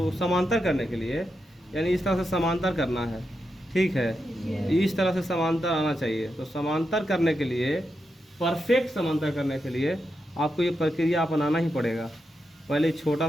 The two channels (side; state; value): both; normal; correlation 0.86